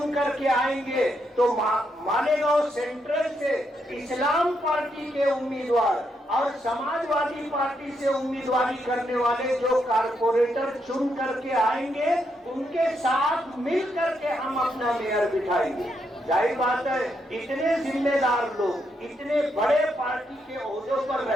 کر کے آئیں گے تو مالیگاؤں سینٹرل سے اسلام پارٹی کے امیدوار اور سماجوادی پارٹی سے امیدواری کرنے والے جو کارپوریٹر چن کر کے آئیں گے ان کے ساتھ مل کر کے ہم اپنا میئر بٹھائیں گے. ظاہر بات ہے اتنے ذمہ دار لوگ، اتنے بڑے پارٹی کے عہدوں پر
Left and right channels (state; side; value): normal; both; correlation 0.79